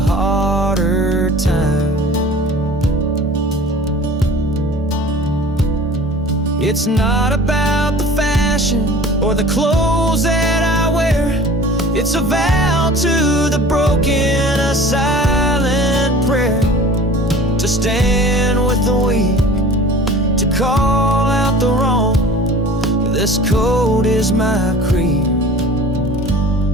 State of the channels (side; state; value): both; normal; correlation 0.43